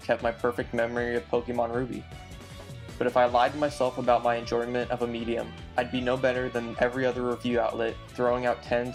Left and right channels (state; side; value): identical; both; correlation 1.00